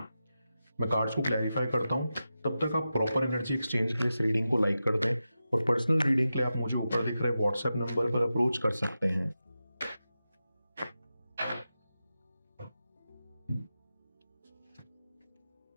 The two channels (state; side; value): inverted; both; correlation -0.91